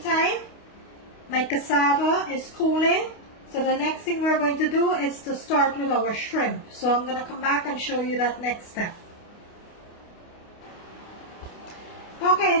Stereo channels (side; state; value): right; late; 29 ms